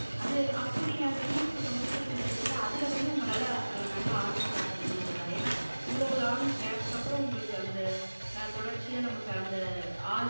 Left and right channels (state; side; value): inverted; both; correlation -1.00